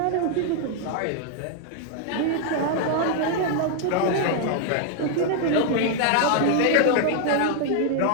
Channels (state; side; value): different; both; correlation 0.00